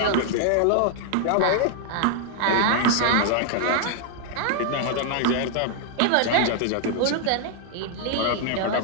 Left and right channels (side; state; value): both; different; correlation 0.00